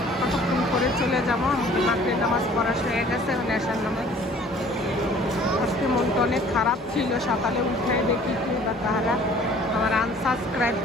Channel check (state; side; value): normal; both; correlation 0.53